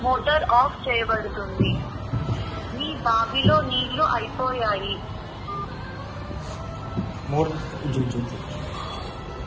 మోటార్ ఆఫ్ చేయబడుతుంది. మీ బావిలో నీళ్లు అయిపోయాయి. మోటార్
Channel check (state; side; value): identical; both; correlation 1.00